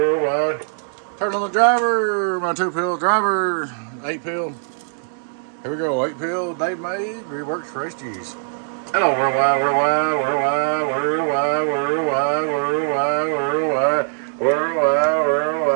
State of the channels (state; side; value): silent; left; digital silence